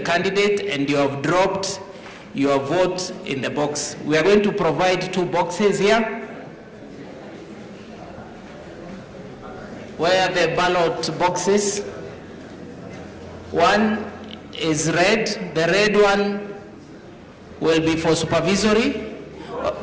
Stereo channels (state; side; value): identical; both; correlation 1.00